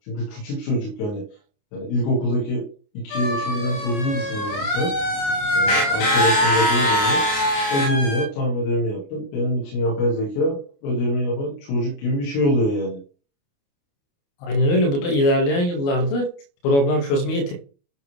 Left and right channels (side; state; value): right; late; 29 ms